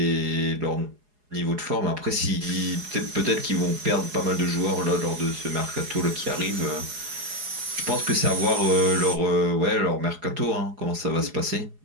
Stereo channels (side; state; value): left; late; 4.8 ms